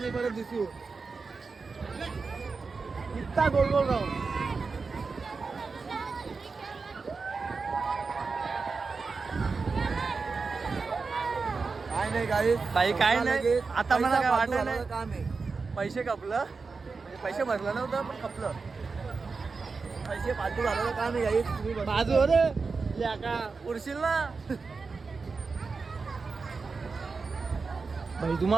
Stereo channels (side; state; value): left; quieter; 4.5 dB